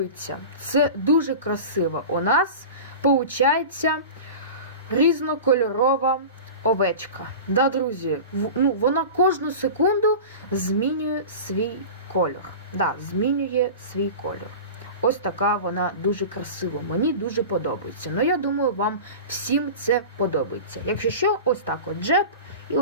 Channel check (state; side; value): inverted; both; correlation -0.33